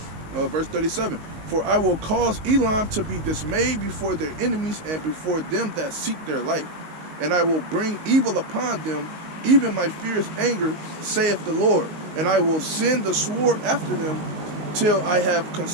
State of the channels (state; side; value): late; left; 19 ms